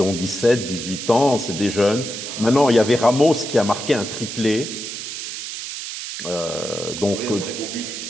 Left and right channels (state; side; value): noise; right; hiss, 7 dB below the sound